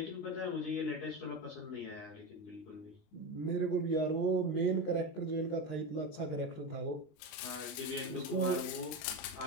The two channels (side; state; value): right; late; 19 ms